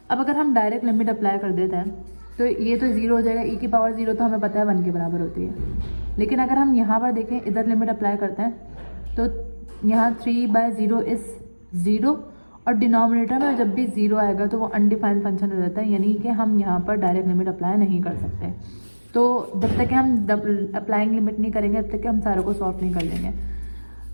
अब अगर हम डायरेक्ट लिमिट अप्लाई कर देते हैं तो ये तो 0 हो जाएगा, e की पावर 0 तो हमें पता है 1 के बराबर होती है। लेकिन अगर हम यहाँ पर देखें, इधर लिमिट अप्लाई करते हैं तो यहाँ 3/0 इज़ 0 और डिनोमिनेटर में जब भी 0 आएगा तो वो अनडिफाइंड फंक्शन हो जाता है, यानी कि हम यहाँ पर डायरेक्ट लिमिट अप्लाई नहीं कर सकते। तो जब तक कि हम अप्लाइंग लिमिट नहीं करेंगे तब तक कि हम सारों को सॉल्व नहीं कर लेंगे।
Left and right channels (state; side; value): inverted; both; correlation -1.00